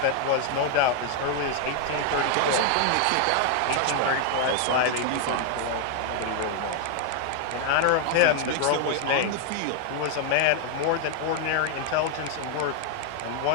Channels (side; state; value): both; different; correlation 0.00